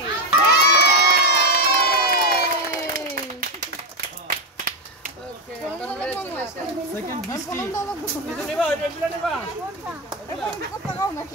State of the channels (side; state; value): both; normal; correlation 0.09